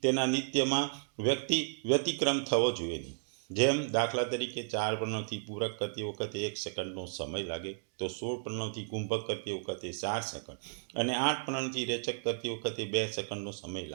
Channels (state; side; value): silent; left; digital silence